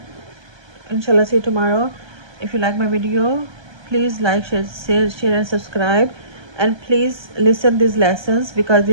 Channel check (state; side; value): late; left; 1.3 ms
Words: Inshallah, see you tomorrow. If you like my video, please like, share and subscribe, and please listen these lessons because